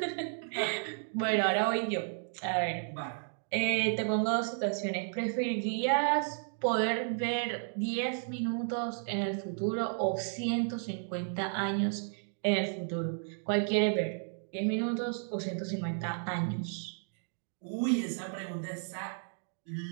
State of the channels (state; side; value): silent; left; digital silence